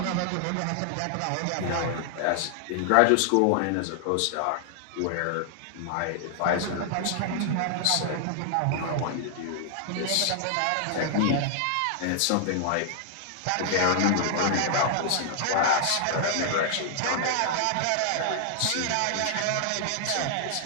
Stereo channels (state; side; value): different; both; correlation 0.00